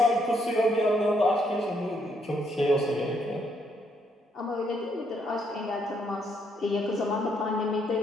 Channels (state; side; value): normal; both; correlation 0.73